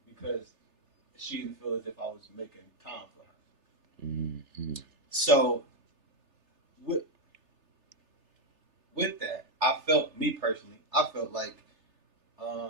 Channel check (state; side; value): late; left; 3.3 ms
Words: because she didn't feel as if I was making time for her. Mm-hmm. So with that, I felt like